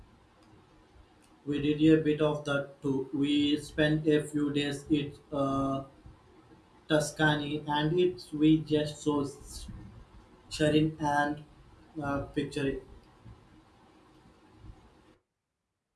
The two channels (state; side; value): identical; both; correlation 1.00